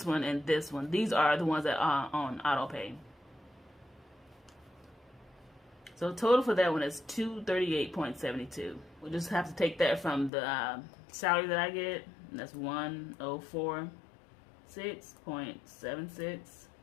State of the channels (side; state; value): right; drops out; at 10.3 s